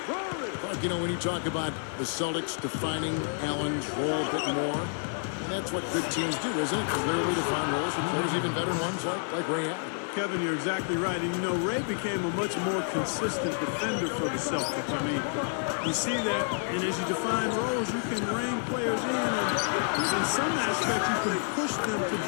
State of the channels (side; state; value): right; silent; 58 dB below the other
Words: But, you know, when you talk about the Celtics defining Allen's role a bit more, and that's what good teams do, isn't it? Clearly defined roles with players, even veteran ones like Ray Allen. Kevin, you're exactly right. And, you know, Ray became a much more consistent defender for the Celtics. I mean, you see that, and as you define roles, you can rein players in, and in some aspects, you can push them to